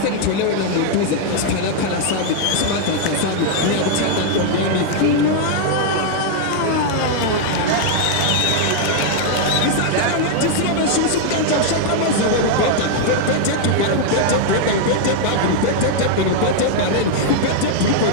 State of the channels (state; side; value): different; both; correlation -0.01